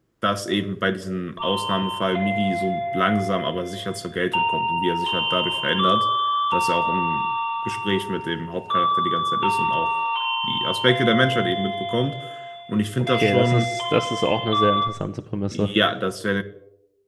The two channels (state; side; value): identical; both; correlation 1.00